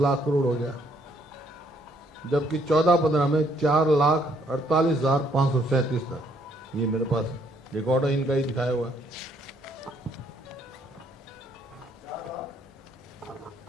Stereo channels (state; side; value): normal; both; correlation 0.68